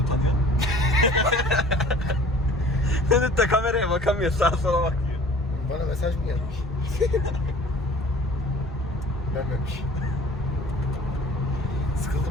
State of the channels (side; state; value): both; normal; correlation 0.48